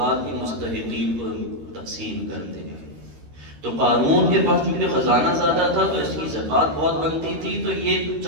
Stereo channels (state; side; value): late; left; 13 ms